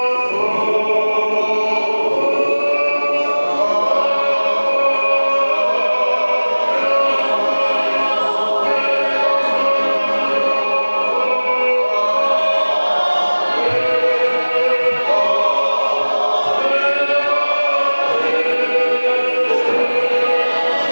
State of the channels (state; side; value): inverted; both; correlation -1.00